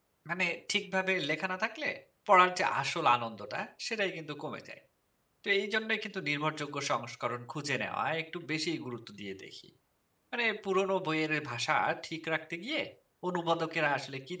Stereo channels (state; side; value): identical; both; correlation 1.00